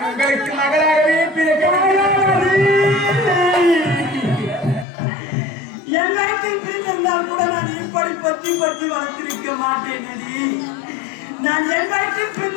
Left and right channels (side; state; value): right; drops out; at 4.9 s